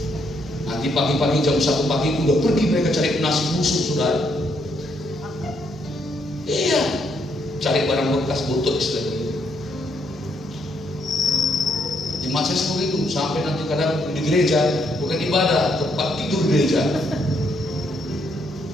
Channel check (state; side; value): normal; both; correlation 0.74